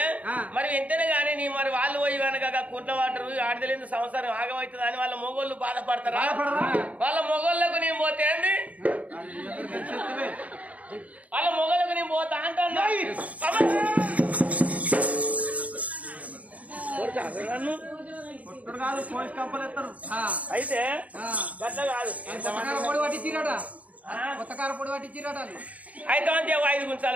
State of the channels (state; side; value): late; left; 0.070 ms